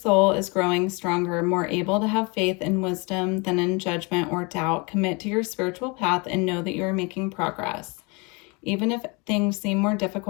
is growing stronger, more able to have faith and wisdom than in judgment or doubt. Commit to your spiritual path and know that you are making progress. Even if things seem more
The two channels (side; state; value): right; quieter; 29.1 dB